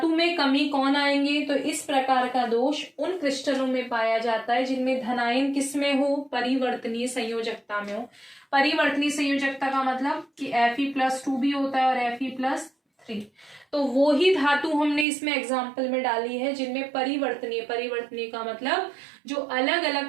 में कमी कौन आएंगे, तो इस प्रकार का दोष उन क्रिस्टलों में पाया जाता है जिनमें धनायन किस में हो, परिवर्तनीय संयोजकता में हो। परिवर्तनीय संयोजकता का मतलब कि Fe+2 भी होता है और Fe+3। तो वो ही धातु हमने इसमें एग्जाम्पल में डाली है जिनमें परिवर्तनीय, परिवर्तनीय का मतलब जो अलग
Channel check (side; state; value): left; drops out; at 15.1 s